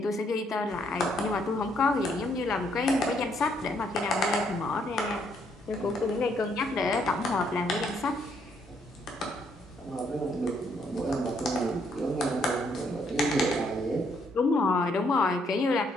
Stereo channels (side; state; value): both; normal; correlation 0.71